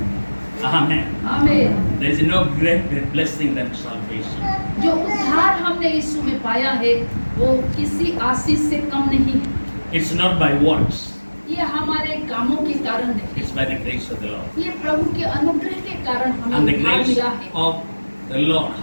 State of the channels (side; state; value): both; inverted; correlation -1.00